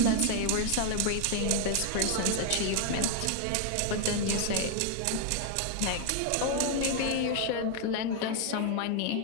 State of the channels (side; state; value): both; different; correlation 0.00